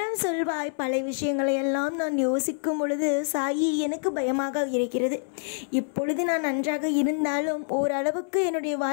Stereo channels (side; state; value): right; silent; 61 dB below the other